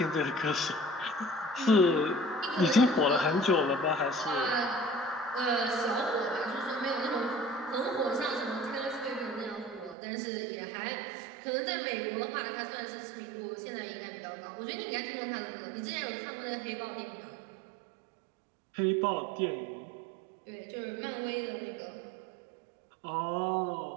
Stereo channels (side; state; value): left; drops out; at 10.0 s